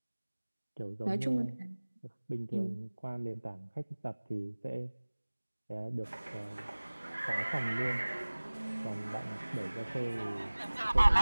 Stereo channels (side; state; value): both; inverted; correlation -1.00